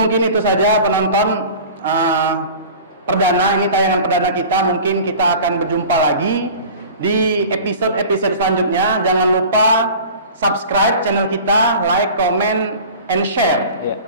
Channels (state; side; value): inverted; both; correlation -0.40